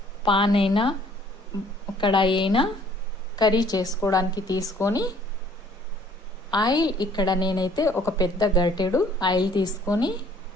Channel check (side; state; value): both; normal; correlation 0.58